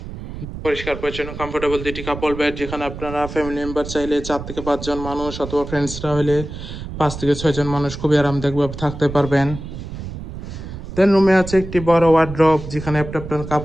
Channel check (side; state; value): right; noise; rumble, 10 dB below the sound